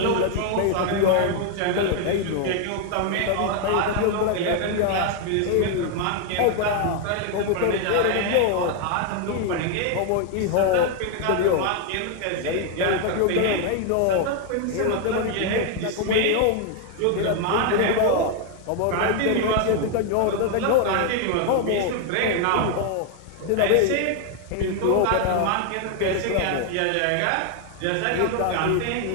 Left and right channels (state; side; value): different; both; correlation 0.01